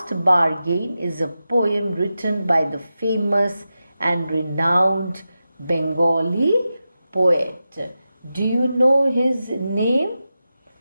Bargain is a poem written by the famous and renowned Bengali poet. Do you know his name?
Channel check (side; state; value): both; inverted; correlation -0.91